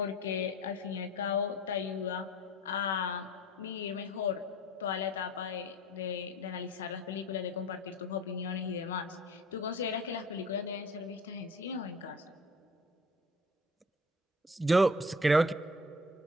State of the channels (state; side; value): normal; both; correlation 0.43